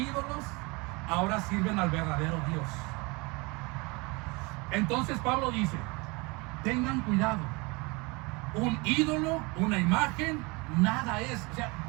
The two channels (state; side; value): quieter; left; 27.0 dB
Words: ahora sirven al verdadero Dios. Entonces Pablo dice, tengan cuidado. Un ídolo, una imagen, nada es, o sea,